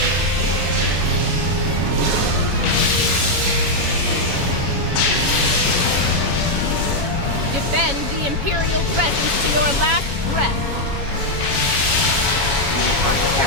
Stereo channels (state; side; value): late; left; 7.2 ms